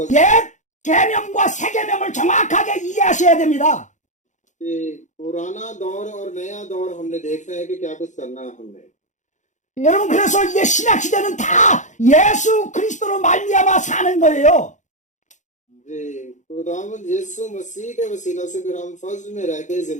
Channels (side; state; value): right; late; 0.35 ms